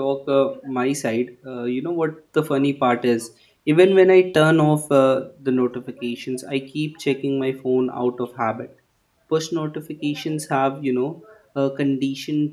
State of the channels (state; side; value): identical; both; correlation 1.00